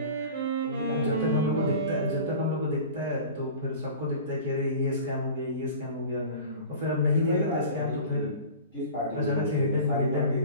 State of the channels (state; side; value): inverted; both; correlation -0.38